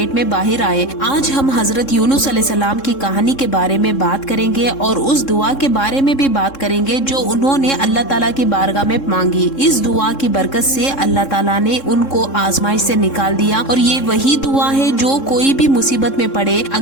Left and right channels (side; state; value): right; late; 3.7 ms